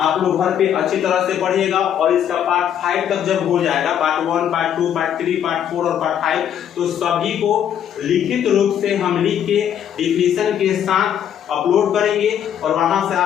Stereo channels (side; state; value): right; quieter; 9.5 dB